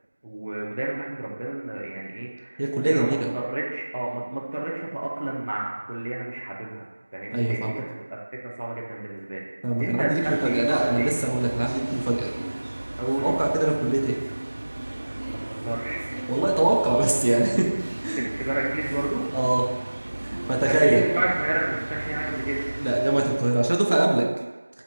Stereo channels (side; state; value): both; inverted; correlation -1.00